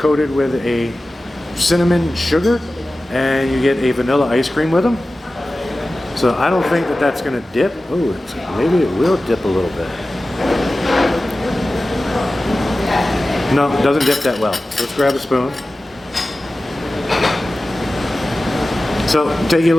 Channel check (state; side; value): normal; both; correlation 0.95